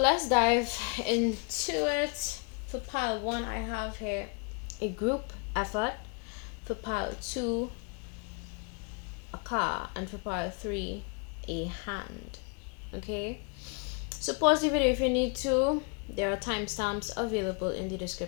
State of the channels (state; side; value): quieter; right; 34.7 dB